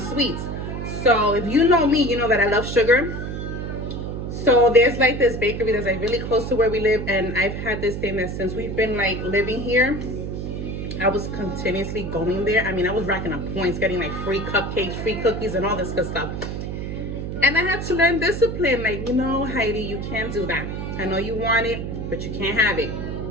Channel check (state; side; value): noise; right; hum, 5 dB below the sound